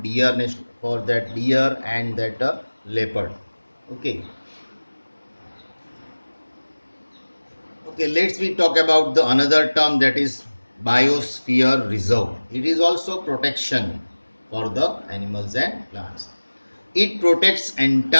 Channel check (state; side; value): inverted; both; correlation -1.00